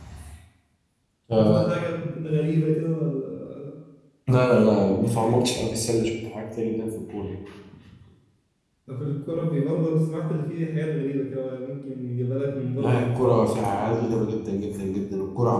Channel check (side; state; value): both; identical; correlation 1.00